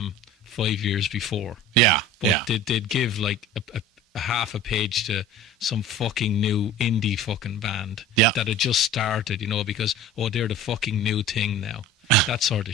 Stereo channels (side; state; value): both; normal; correlation 0.39